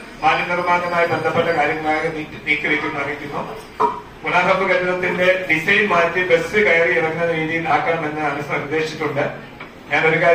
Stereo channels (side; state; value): both; identical; correlation 1.00